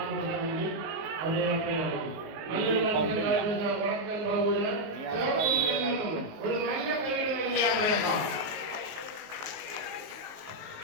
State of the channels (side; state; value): left; late; 19 ms